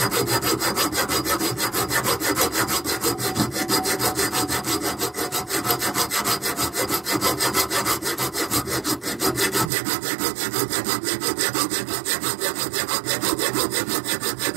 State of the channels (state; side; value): drops out; left; at 9.7 s